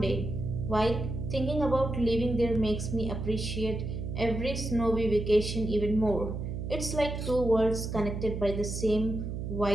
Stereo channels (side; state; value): right; noise; hum, 5 dB below the sound